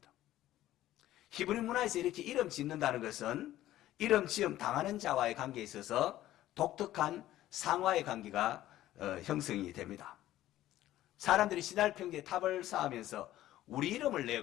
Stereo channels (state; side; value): quieter; right; 14.2 dB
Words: 히브리 문화에서 이렇게 이름 짓는다는 것은 이름 지음 당하는 자와의 관계에 있어서 독특한 상화의 관계가 형성이 됩니다. 사람들이 시날 평지에 탑을 쌓으면서 우리 이름을